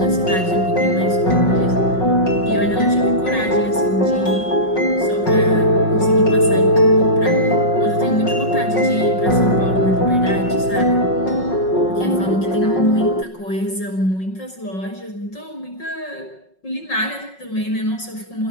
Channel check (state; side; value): late; right; 5.4 ms